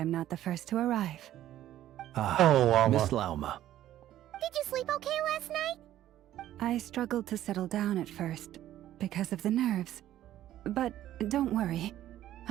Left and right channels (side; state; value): left; quieter; 12.8 dB